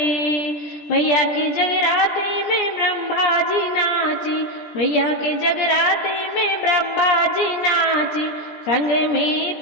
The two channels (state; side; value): late; right; 17 ms